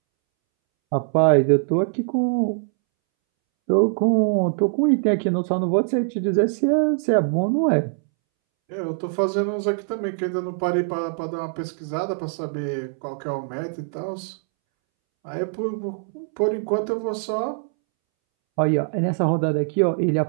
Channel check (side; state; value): left; silent; 64 dB below the other